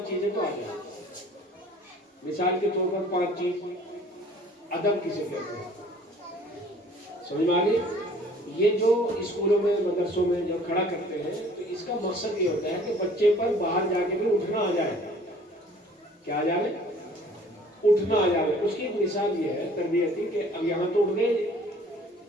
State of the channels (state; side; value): normal; both; correlation 0.53